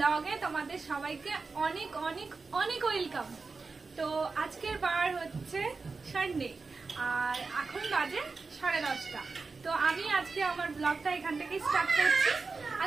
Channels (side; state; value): left; quieter; 4.3 dB